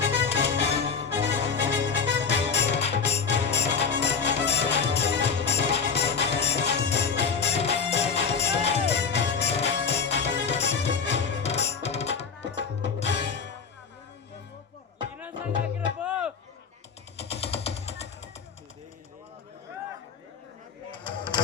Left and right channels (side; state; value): right; quieter; 5.9 dB